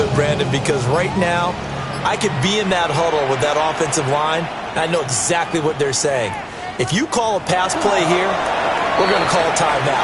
Brandon, because right now I could be in that huddle with that offensive line. I know exactly what they're saying. If you call a pass play here, we're going to call a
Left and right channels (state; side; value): identical; both; correlation 1.00